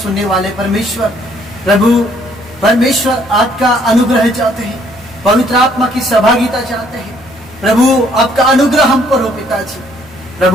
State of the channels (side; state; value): both; normal; correlation 0.65